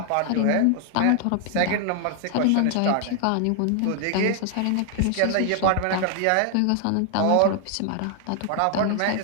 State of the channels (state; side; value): different; both; correlation 0.00